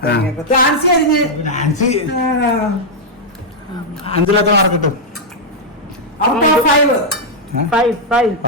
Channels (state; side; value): normal; both; correlation -0.04